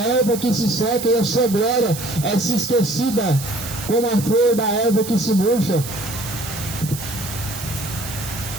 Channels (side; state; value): right; noise; hiss, 10 dB below the sound